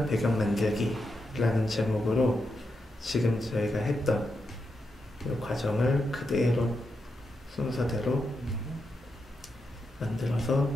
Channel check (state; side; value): normal; both; correlation 0.85